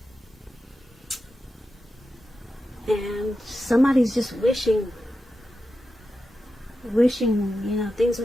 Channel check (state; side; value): normal; both; correlation 0.90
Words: And somebody's just wishing, things